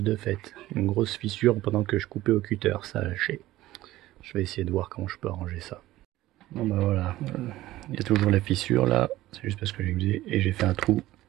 de faite. Une grosse fissure pendant que je coupais au cutter, ça a lâché. Je vais essayer de voir comment je peux arranger ça. Bon bah voilà, il y a toujours la fissure là, c'est juste parce que j'ai usé et j'ai fait un trou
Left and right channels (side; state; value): left; quieter; 16.1 dB